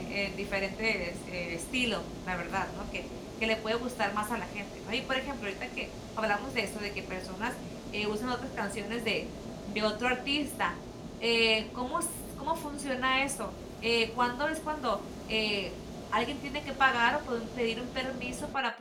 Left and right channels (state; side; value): identical; both; correlation 1.00